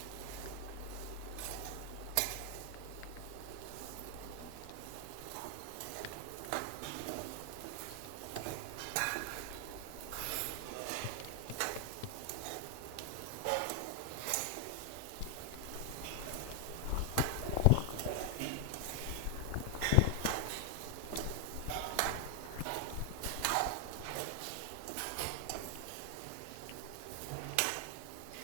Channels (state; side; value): different; both; correlation 0.00